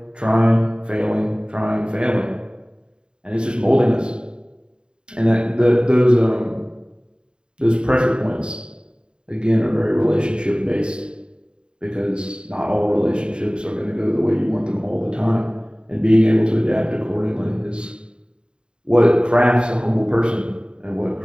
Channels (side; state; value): left; late; 0.050 ms